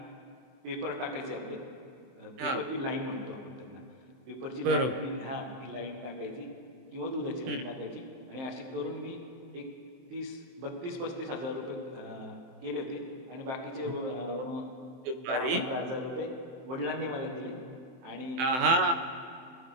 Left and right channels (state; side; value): late; left; 23 ms